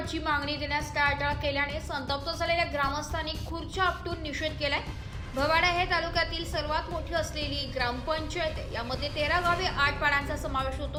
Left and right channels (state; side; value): identical; both; correlation 1.00